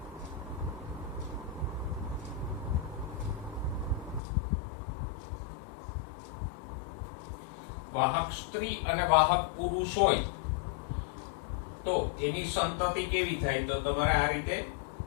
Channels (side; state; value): right; drops out; at 4.2 s